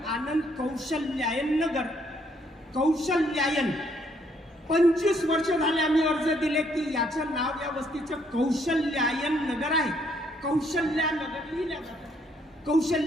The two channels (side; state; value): both; normal; correlation 0.69